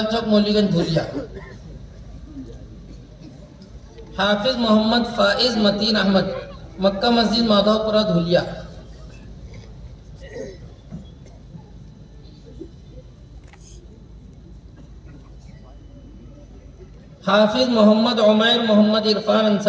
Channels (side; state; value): both; identical; correlation 1.00